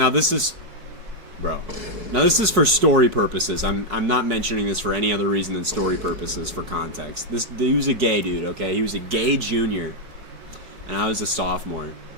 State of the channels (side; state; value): left; late; 4.6 ms